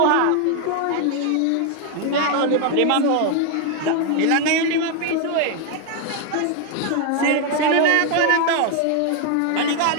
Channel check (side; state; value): both; different; correlation 0.01